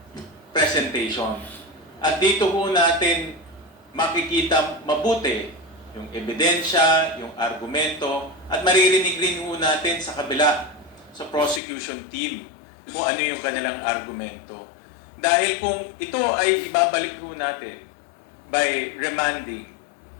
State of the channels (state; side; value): drops out; right; at 11.6 s